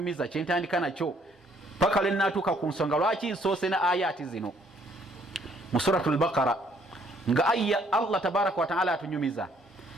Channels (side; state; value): both; normal; correlation 0.65